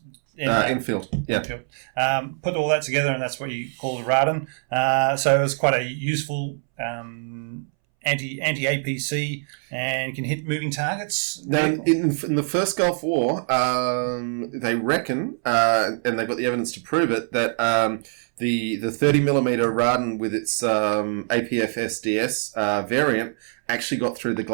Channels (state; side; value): silent; left; 63 dB below the other